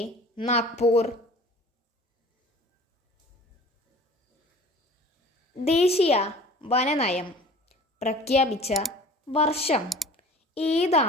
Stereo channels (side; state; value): both; normal; correlation 0.45